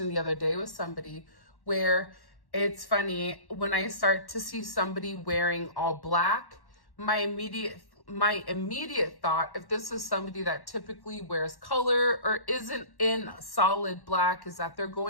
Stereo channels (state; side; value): late; right; 1.1 ms